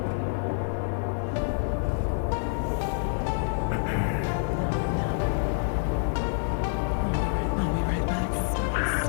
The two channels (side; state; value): right; silent; digital silence